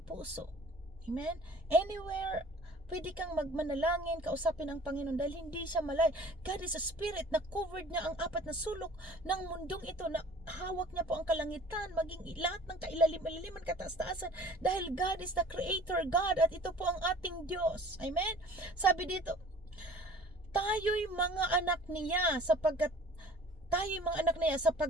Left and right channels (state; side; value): normal; both; correlation 0.47